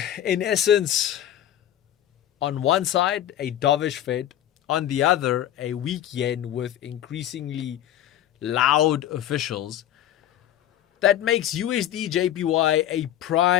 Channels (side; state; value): right; quieter; 11.6 dB